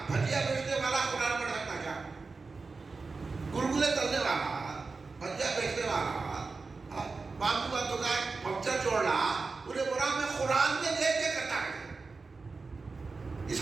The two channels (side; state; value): left; quieter; 4.2 dB